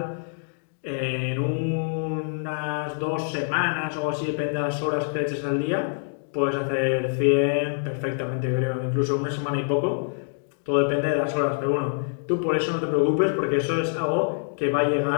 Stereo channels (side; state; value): right; silent; digital silence